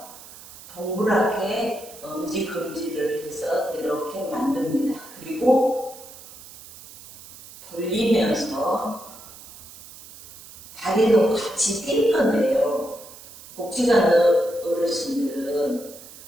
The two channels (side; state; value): right; noise; hiss, 18 dB below the sound